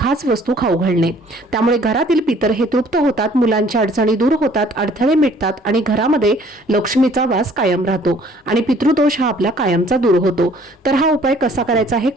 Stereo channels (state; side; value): normal; both; correlation 0.57